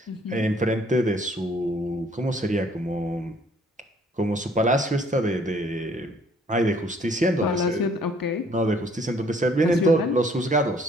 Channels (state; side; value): normal; both; correlation 0.61